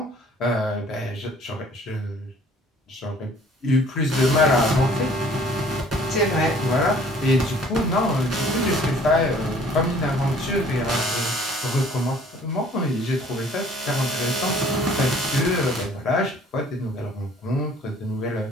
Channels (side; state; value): both; normal; correlation 0.55